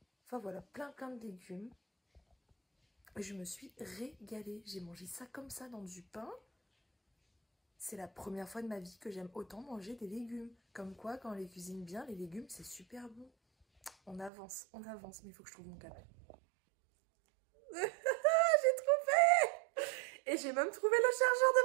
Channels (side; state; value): left; drops out; at 14.3 s